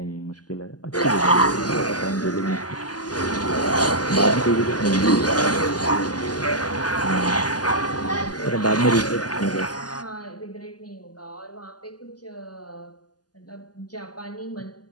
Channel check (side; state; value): right; late; 0.69 ms